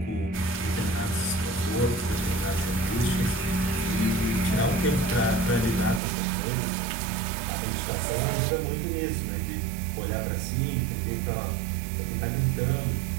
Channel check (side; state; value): left; drops out; at 6.0 s